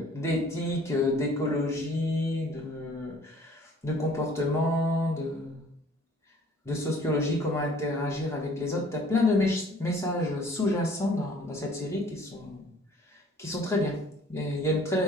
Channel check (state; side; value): normal; both; correlation 0.54